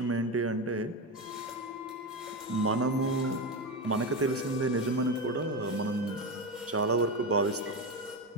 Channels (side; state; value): both; normal; correlation 0.16